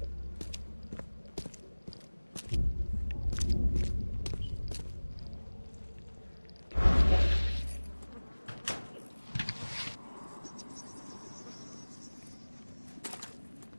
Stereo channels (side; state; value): both; inverted; correlation -1.00